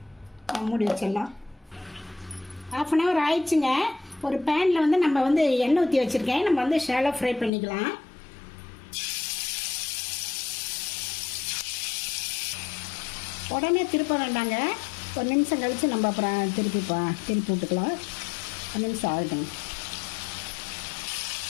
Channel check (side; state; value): right; drops out; at 7.5 s